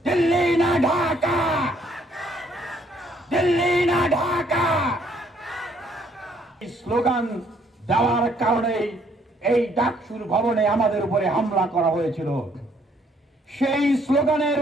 দিল্লি না ঢাকা, দিল্লি না ঢাকা। স্লোগান দেওয়ার কারণে এই ডাকসুর ভবনে আমাদের উপরে হামলা করা হয়েছিল। সেই স্লোগানের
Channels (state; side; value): normal; both; correlation 0.66